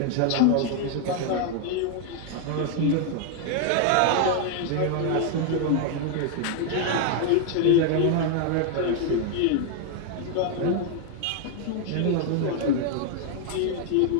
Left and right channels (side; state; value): both; different; correlation 0.00